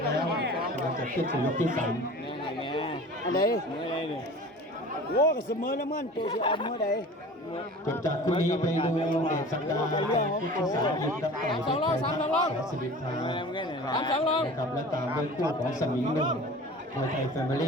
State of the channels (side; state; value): both; normal; correlation 0.40